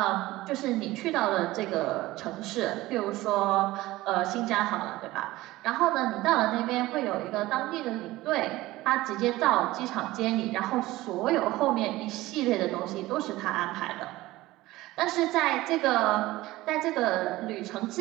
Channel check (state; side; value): quieter; left; 17.9 dB